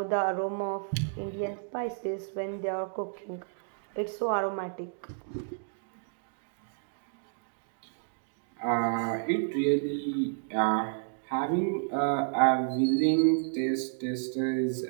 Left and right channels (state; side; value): silent; left; digital silence